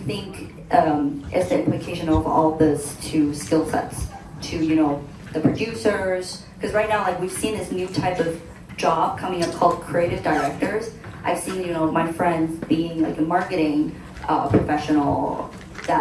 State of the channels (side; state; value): both; identical; correlation 1.00